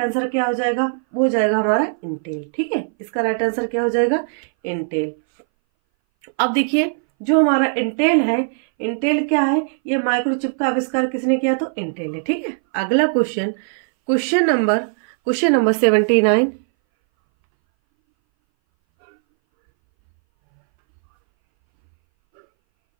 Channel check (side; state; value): left; silent; 62 dB below the other